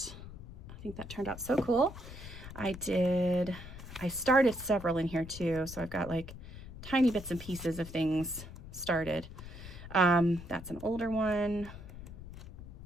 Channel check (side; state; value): left; noise; rumble, 13 dB below the sound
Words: I think that turned out so cool. I started several in here too, so I've got like tiny bits and pieces of things started. That's an older one.